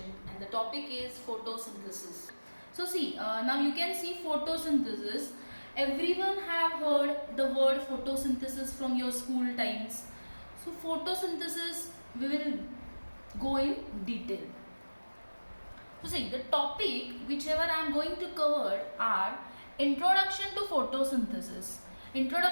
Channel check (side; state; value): both; inverted; correlation -1.00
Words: and the topic is photosynthesis. So see, now you can see photosynthesis. Everyone have heard the word photosynthesis from your school times. So photosynthesis we will go in detail. So see, the topic whichever I am going to cover are introduction to photosynthesis.